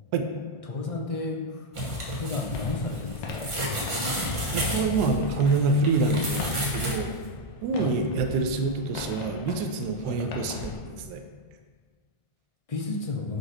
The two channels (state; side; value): late; right; 1.4 ms